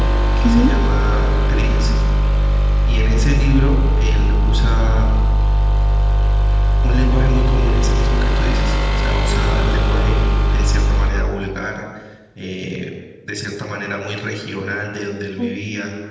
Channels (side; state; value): both; identical; correlation 1.00